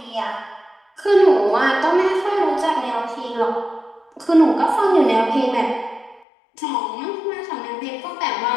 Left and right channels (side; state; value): right; drops out; at 6.2 s